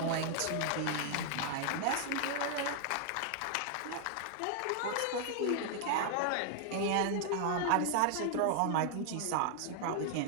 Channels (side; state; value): both; different; correlation 0.00